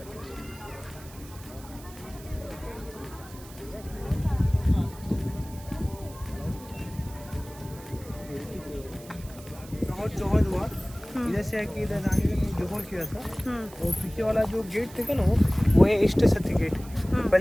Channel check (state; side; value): noise; right; hiss, 19 dB below the sound